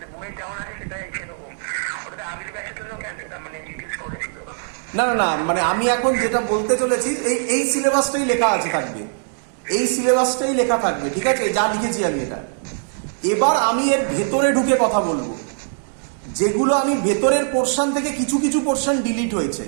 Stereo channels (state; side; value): silent; left; digital silence